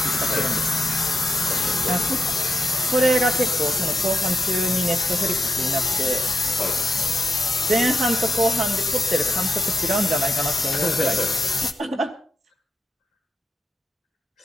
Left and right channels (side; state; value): both; normal; correlation 0.83